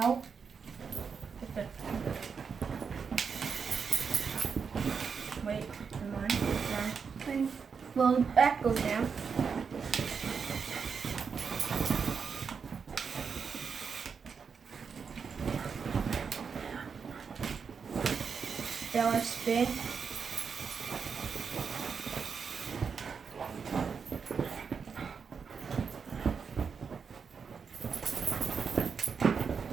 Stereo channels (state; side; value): quieter; left; 6.0 dB